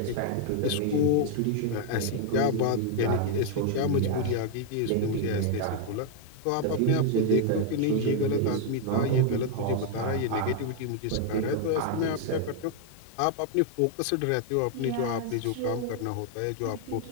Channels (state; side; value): different; both; correlation 0.00